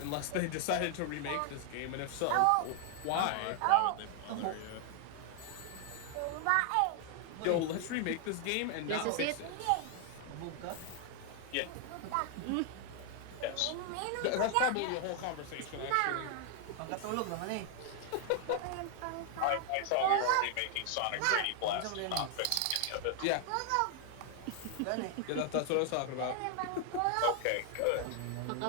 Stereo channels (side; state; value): both; different; correlation 0.00